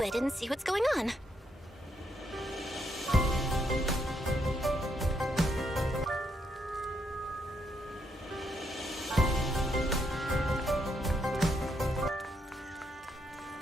it and see what's going on.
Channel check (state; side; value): normal; both; correlation 0.76